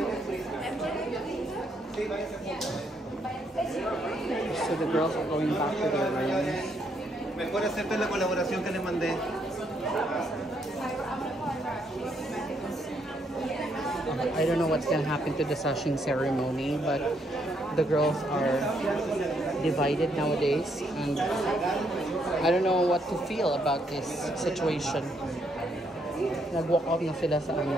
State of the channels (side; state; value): both; normal; correlation 0.74